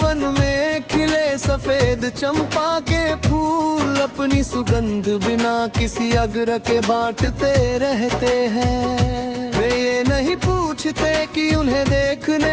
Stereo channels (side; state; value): both; identical; correlation 1.00